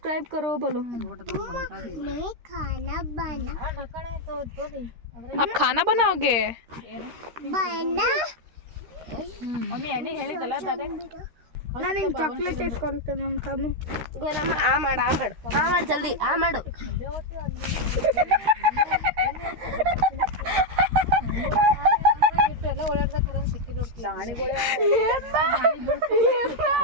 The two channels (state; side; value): late; left; 13 ms